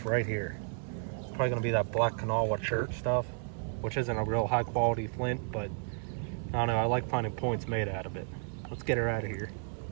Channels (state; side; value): silent; left; 56 dB below the other